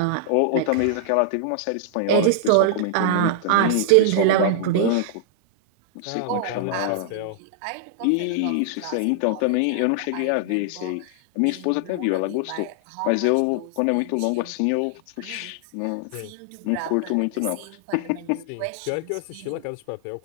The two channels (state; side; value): different; both; correlation -0.01